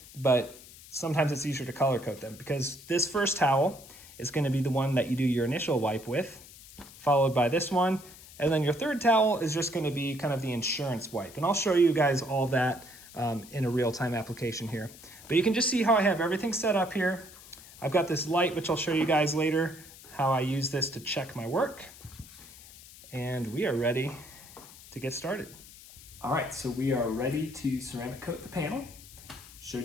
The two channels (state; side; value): noise; left; hiss, 19 dB below the sound